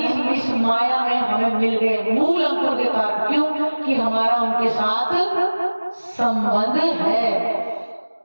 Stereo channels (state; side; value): inverted; both; correlation -1.00